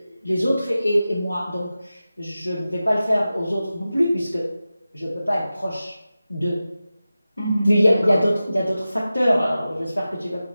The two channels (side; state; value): both; inverted; correlation -0.94